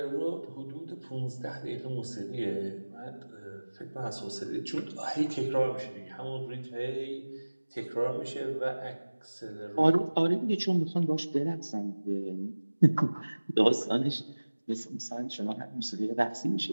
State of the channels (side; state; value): both; inverted; correlation -1.00